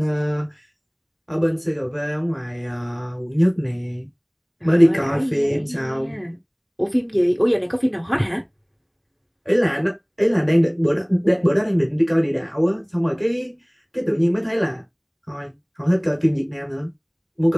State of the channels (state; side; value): identical; both; correlation 1.00